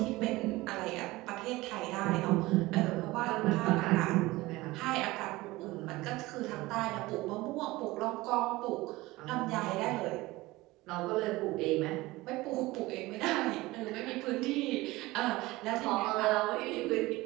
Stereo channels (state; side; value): quieter; left; 19.8 dB